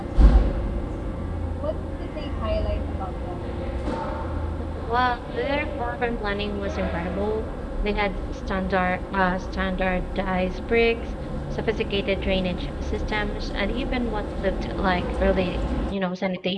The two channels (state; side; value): identical; both; correlation 1.00